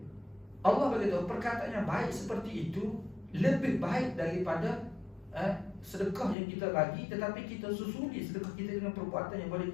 Allah bagi tahu perkataan yang baik seperti itu lebih baik daripada sedekah yang kita bagi, tetapi kita susuli sedekah kita dengan perbuatan yang boleh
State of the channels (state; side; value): drops out; right; at 6.4 s